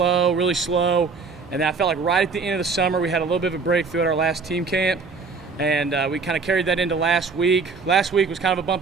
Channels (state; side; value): quieter; left; 4.7 dB